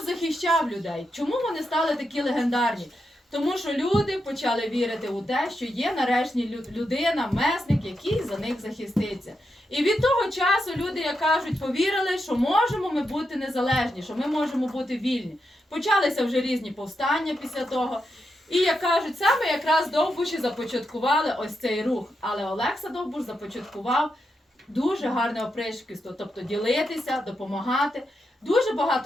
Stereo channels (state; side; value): normal; both; correlation 0.85